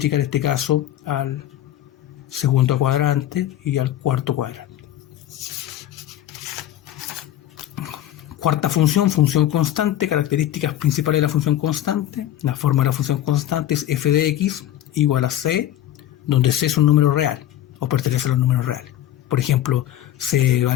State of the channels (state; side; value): quieter; right; 12.4 dB